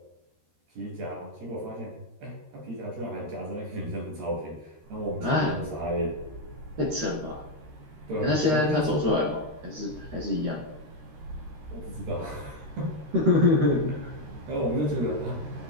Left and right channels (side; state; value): left; late; 13 ms